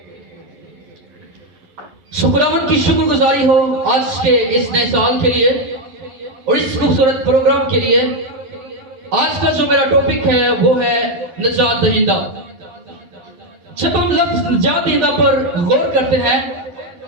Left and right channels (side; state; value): left; late; 12 ms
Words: خداوند کی شکر گزاری ہو آج کے اس نئے سال کے لیے اور اس خوبصورت پروگرام کے لیے. آج کا جو میرا ٹاپک ہے وہ ہے نجات دہندہ. جب ہم لفظ نجات دہندہ پر غور کرتے ہیں